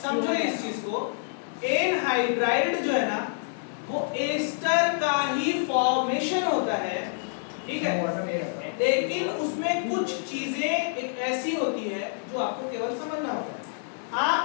इस चीज को। एनहाइड्राइड जो है ना वो एस्टर का ही फॉर्मेशन होता है, ठीक है, लेकिन उसमें कुछ चीजें एक ऐसी होती है जो आपको केवल समझना होता है। आप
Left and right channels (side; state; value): right; silent; digital silence